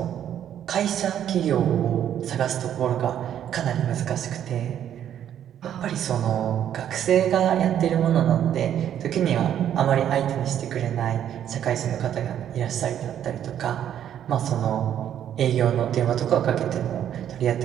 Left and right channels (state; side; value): quieter; left; 10.2 dB